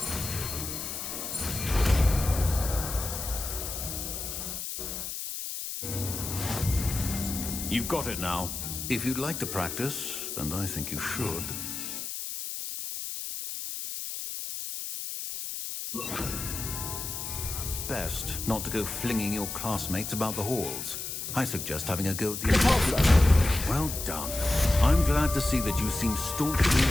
You've got it now. If you'd like to practice, and I think you should... It's best not to go flinging your classmates about the halls. I suggest having a go at the... Well done. I'm glad to see that you seem staunchly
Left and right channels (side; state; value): left; noise; hiss, 6 dB below the sound